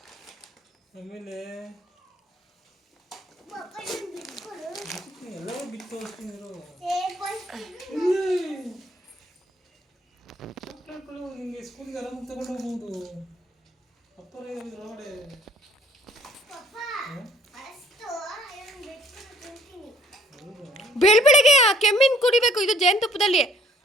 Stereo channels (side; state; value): both; normal; correlation 0.60